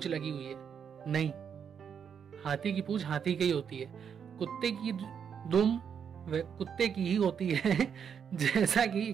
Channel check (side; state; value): left; quieter; 7.5 dB